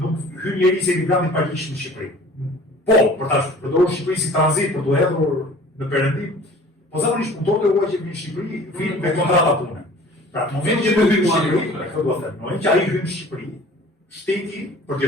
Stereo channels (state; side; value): normal; both; correlation 0.47